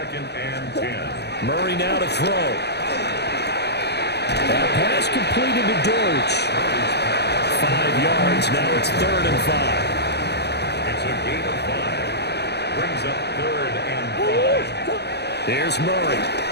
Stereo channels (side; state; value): right; late; 0.49 ms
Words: and 10. Murray now to throw. That pass completed to Dortch. 5 yards. Now it's 3rd and 5. It's a gain of 5. Brings up 3rd and 5. Here's Murray.